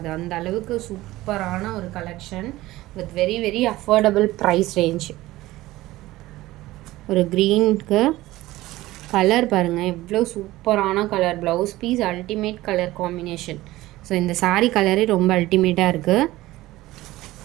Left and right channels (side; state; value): left; quieter; 17.4 dB